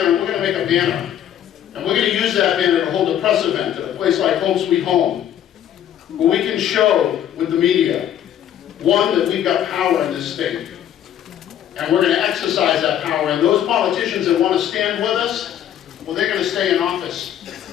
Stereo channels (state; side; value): quieter; right; 10.6 dB